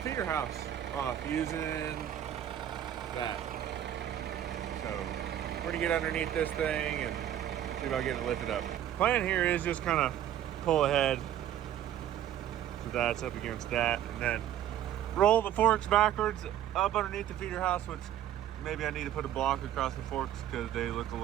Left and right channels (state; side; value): quieter; left; 11.2 dB